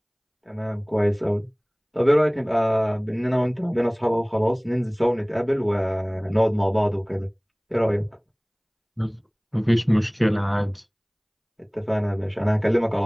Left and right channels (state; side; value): identical; both; correlation 1.00